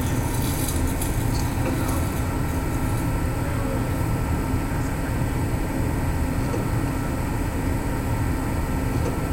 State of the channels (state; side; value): identical; both; correlation 1.00